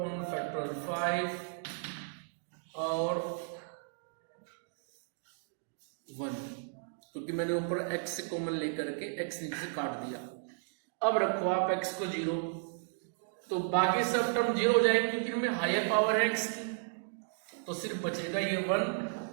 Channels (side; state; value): left; silent; digital silence